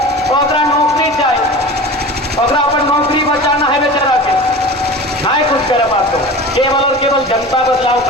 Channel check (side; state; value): both; normal; correlation 0.35